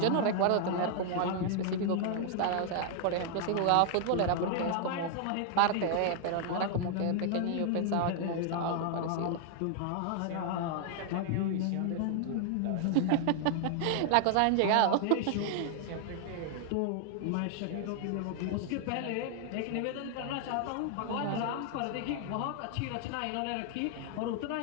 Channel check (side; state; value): both; different; correlation 0.00